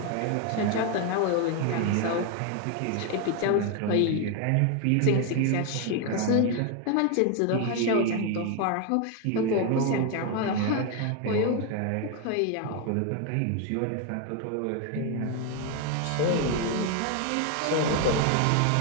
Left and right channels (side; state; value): both; different; correlation 0.01